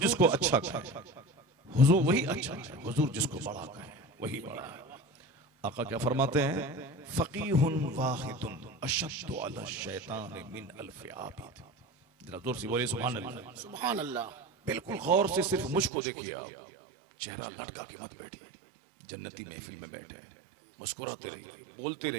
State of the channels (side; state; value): left; drops out; at 15.9 s